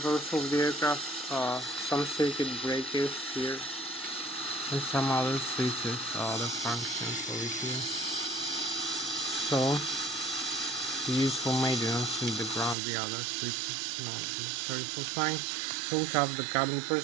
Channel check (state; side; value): drops out; left; at 12.8 s